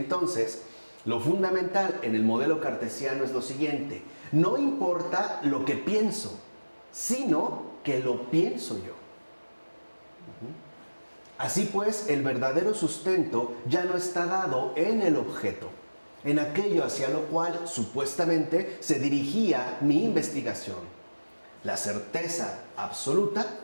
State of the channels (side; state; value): both; inverted; correlation -1.00